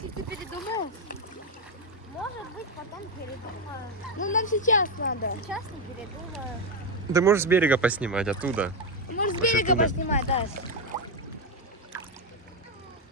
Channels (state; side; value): normal; both; correlation 0.06